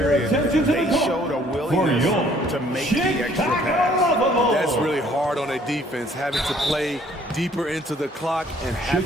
they showed a willingness to make the extra pass. That's really hard on a defense, having to play deeper into the clock and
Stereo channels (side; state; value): both; normal; correlation 0.60